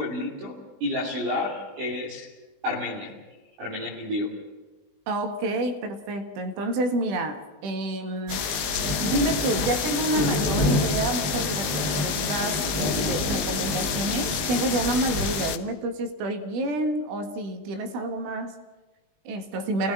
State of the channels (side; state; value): left; late; 20 ms